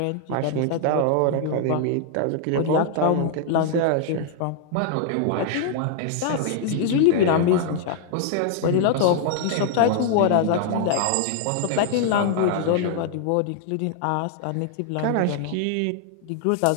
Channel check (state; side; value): different; both; correlation 0.00